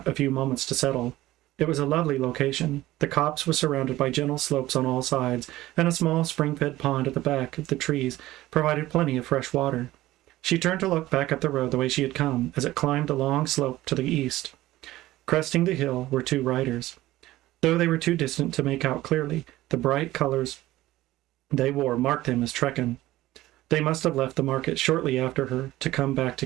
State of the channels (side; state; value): left; quieter; 16.3 dB